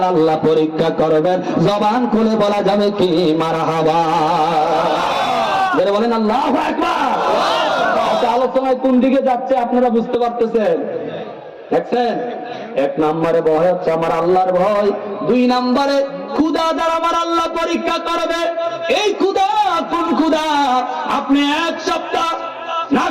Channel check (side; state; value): both; identical; correlation 1.00